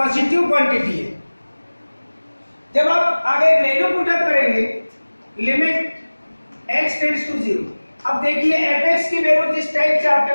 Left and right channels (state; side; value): inverted; both; correlation -1.00